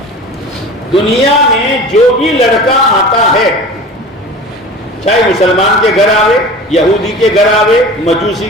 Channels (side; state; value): both; normal; correlation 0.37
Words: دنیا میں جو بھی لڑکا آتا ہے, چاہے مسلمان کے گھر آوے, یہودی کے گھر آوے, مجوسی